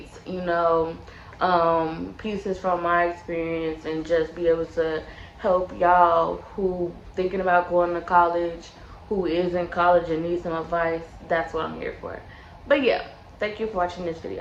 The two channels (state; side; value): identical; both; correlation 1.00